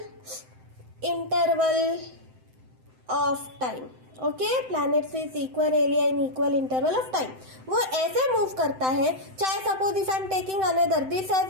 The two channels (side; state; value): left; late; 7.8 ms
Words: interval of time. Okay, planets with equal area in equal interval of time. वो ऐसे move करता है, चाहे suppose if I am taking another this